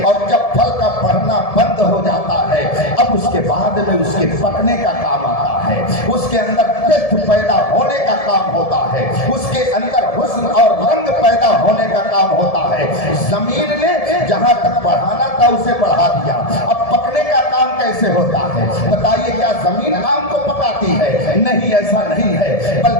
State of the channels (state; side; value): late; right; 1.7 ms